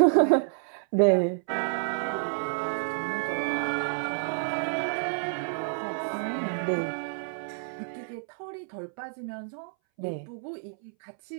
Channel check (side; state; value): left; silent; 59 dB below the other